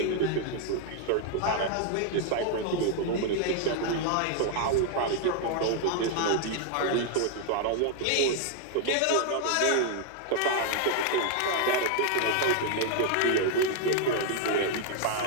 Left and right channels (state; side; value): different; both; correlation 0.00